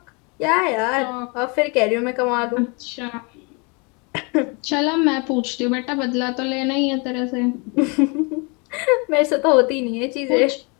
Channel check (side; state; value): right; quieter; 31.3 dB